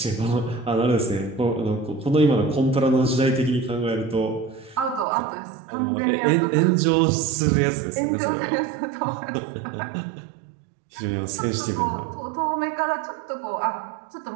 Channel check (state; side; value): drops out; left; at 5.1 s